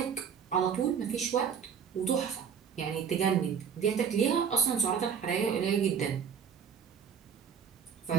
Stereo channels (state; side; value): quieter; left; 7.2 dB